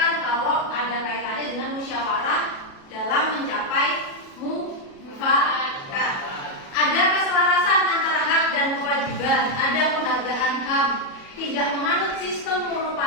kalau ada kaitannya dengan musyawarah dalam mencapai mufakat. Ada keselarasan antara hak dan kewajiban, ada penghargaan HAM, tidak menganut sistem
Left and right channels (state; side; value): late; right; 37 ms